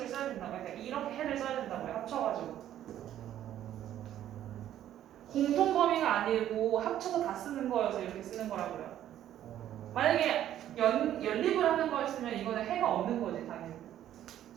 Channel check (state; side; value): quieter; left; 11.6 dB